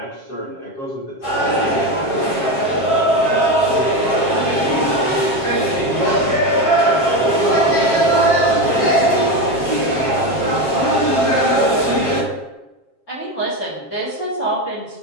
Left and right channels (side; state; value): right; late; 7.5 ms